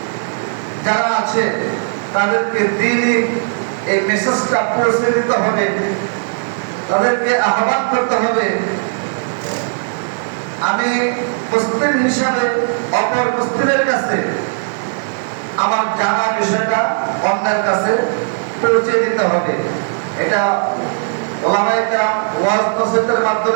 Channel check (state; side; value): silent; left; digital silence